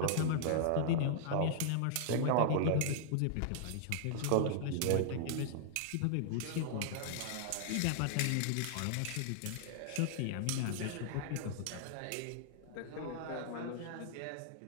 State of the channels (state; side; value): different; both; correlation -0.01